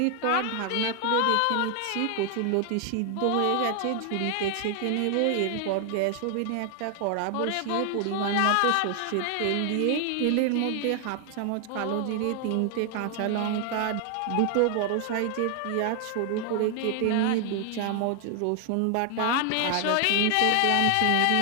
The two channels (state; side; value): different; both; correlation 0.00